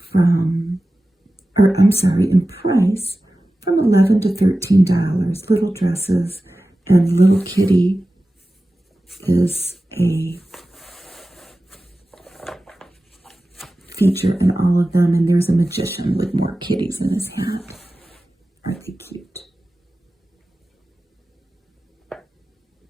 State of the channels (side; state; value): both; normal; correlation 0.95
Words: in price from $11 to $13. Little dresses, and little kitty is a feature in all of them, and there's a magician with more kitties in his hat. Aren't they cute?